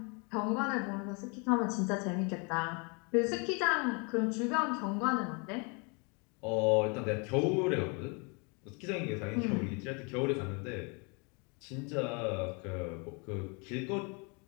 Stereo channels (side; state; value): right; quieter; 32.7 dB